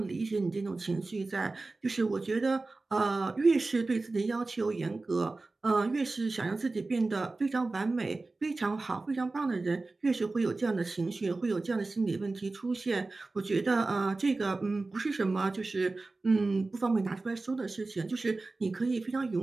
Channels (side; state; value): left; quieter; 3.4 dB